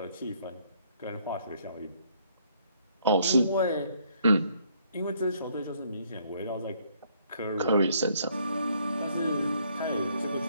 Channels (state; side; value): inverted; both; correlation -0.66